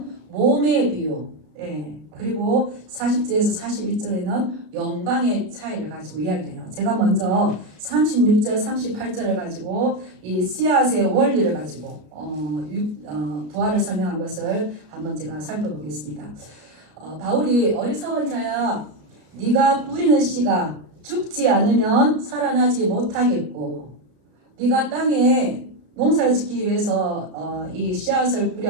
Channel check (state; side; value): late; left; 33 ms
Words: 몸의 비유, 그리고 40절에서 42절에는 영광의 차이를 가지고 이야기해요. 제가 먼저 36절, 38절을 가지고 이 씨앗의 원리를 가지고 부활을 설명한 것을 한번 제가 살펴보겠습니다. 바울이 어리석은 자야, 네가 뿌리는 씨가 죽지 않으면 살아나지 못하겠고, 네가 땅에 농사를 짓기 위해서 이 씨앗을